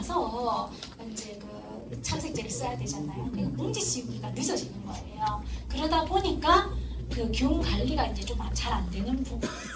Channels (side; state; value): both; identical; correlation 1.00